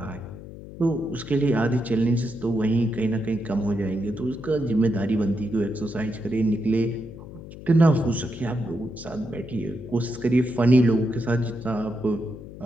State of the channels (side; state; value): left; noise; hum, 14 dB below the sound